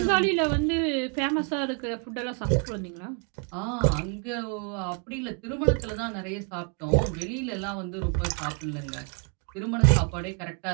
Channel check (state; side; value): quieter; left; 39.0 dB